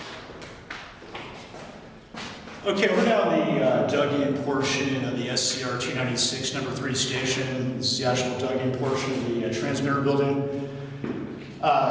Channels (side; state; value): both; identical; correlation 1.00